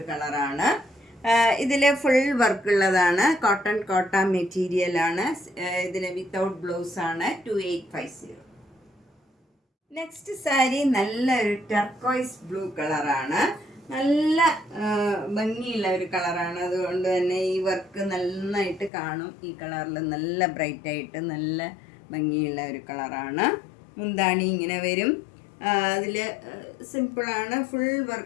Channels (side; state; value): right; drops out; at 18.9 s